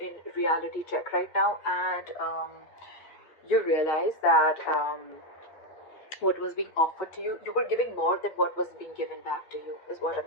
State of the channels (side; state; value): right; late; 8.5 ms